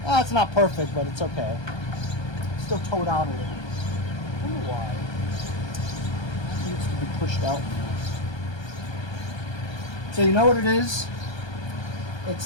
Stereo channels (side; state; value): right; late; 1.3 ms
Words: It's not perfect, but it's okay. It's still towed out a little. I don't know why. It needs to be pushed out more. So you know what it is?